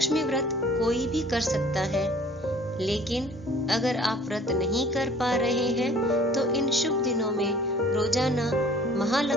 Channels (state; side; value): normal; both; correlation 0.50